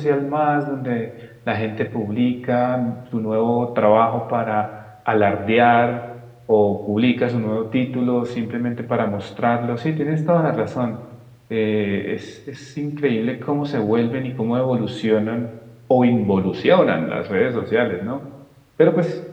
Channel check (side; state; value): both; identical; correlation 1.00